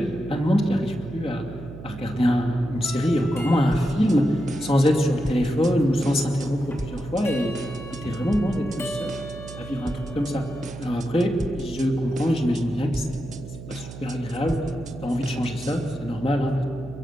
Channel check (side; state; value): right; noise; hum, 13 dB below the sound